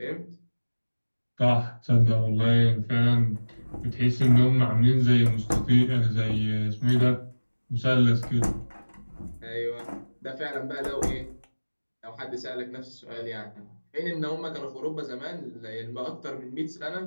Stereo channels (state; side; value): inverted; both; correlation -1.00